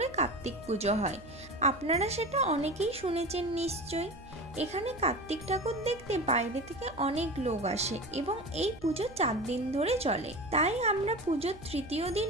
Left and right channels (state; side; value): noise; right; hum, 20 dB below the sound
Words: কার্তিক পুজো হয়। আপনারা সেটা অনেকেই শুনেছেন নিশ্চয়ই। এখানে কার্তিক ঠাকুর দেখতে বাইরে থেকে অনেক লোক আসে এবং এই পুজো 4 দিন ধরে চলে। তাই আমরা পুজোর তৃতীয়